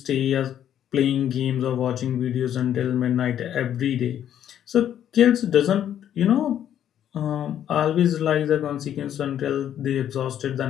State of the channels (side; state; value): right; quieter; 10.3 dB